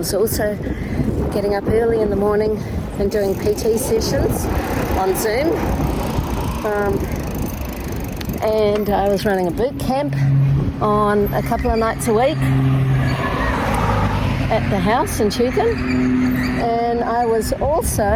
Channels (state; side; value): identical; both; correlation 1.00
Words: also getting up early in the morning and doing PT sessions on Zoom. And I was running a boot camp on a couple of nights a week at the house in Tugun. And I was